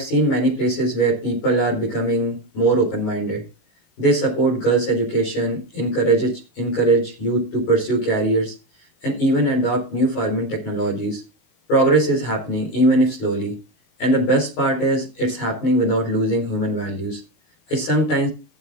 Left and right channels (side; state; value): right; late; 19 ms